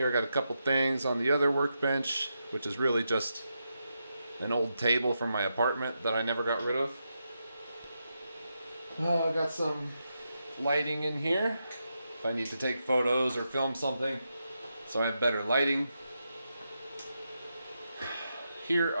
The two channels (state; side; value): inverted; both; correlation -0.85